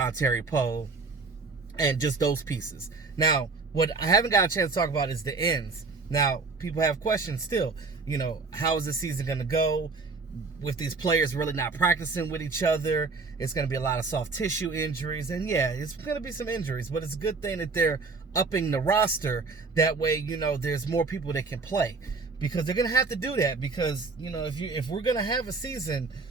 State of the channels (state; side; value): quieter; left; 4.2 dB